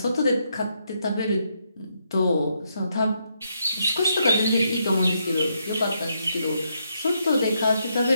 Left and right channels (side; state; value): both; inverted; correlation -0.78